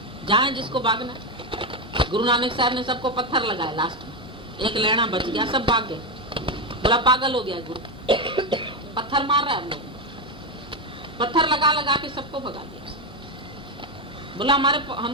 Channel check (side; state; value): both; normal; correlation 0.10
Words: जाए जिसको भागना। गुरु नानक साहब ने सबको पत्थर लगाया, लास्ट में एक लेना बच गया, सब भाग गए। बोला पागल हो गया गुरु, पत्थर मार रहा है हम लोग, पत्थर लगा लगा के सबको भगा दिया। बोला